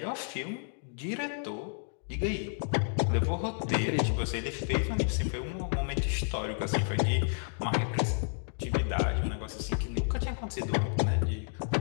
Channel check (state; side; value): silent; right; 57 dB below the other